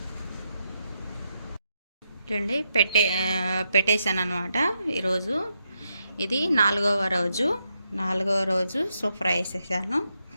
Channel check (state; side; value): inverted; both; correlation -0.82